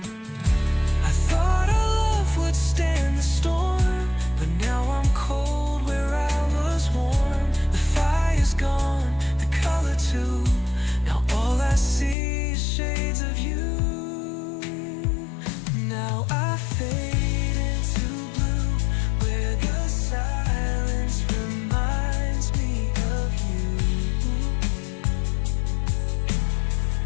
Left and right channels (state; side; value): drops out; right; at 12.2 s